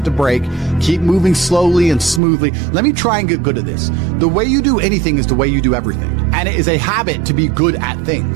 to brake, keep moving slowly and smoothly? Let me try and get good at this. The way you do anything is the way you do everything. And it is a habit to be good at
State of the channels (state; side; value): drops out; left; at 2.2 s